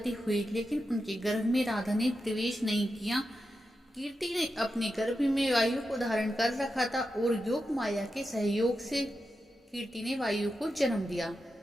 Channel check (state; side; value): normal; both; correlation 0.89